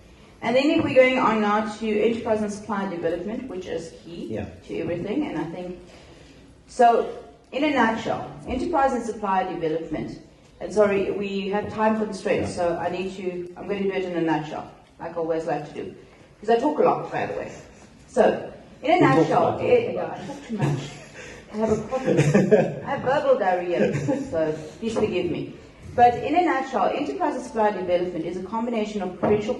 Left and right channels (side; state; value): both; identical; correlation 1.00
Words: And then if we're going on now to enterprise and supply development, which is key to everything, and I think, so in a nutshell, enterprise and supply development. And sorry, we have time constraints, so I'm going to do it in a nutshell, like I always like to do. Because I talk a lot, by the way. So, in a nutshell, I talk too much. I have a problem. I have verbal diarrhea, so please forgive me. But in a nutshell, enterprise and supply development is a combination of provincial